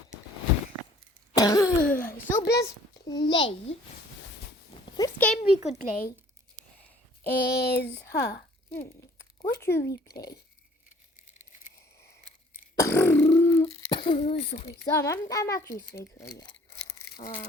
So let's play. First game we could play is what should we play? Sorry, I'm actually sick. So yeah.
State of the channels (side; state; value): both; normal; correlation 0.56